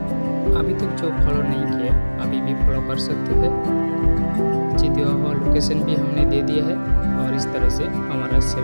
अभी तक जो फॉलो नहीं किया अभी भी फॉलो कर सकते हैं। नीचे दिया हुआ लोकेशन भी हमने दे दिया है और इस तरह से हमारा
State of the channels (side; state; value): both; inverted; correlation -1.00